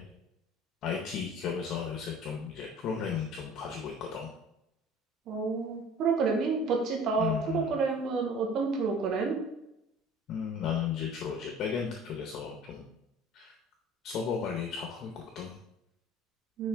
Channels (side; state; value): both; normal; correlation 0.46